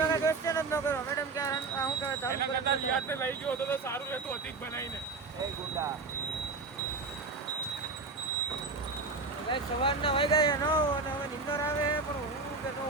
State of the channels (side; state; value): left; quieter; 4.1 dB